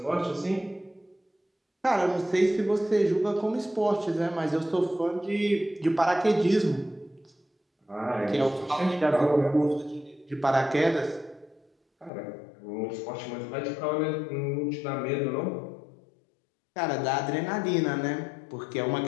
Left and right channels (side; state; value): right; drops out; at 12.1 s